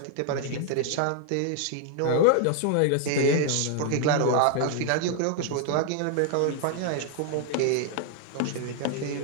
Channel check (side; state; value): both; different; correlation 0.00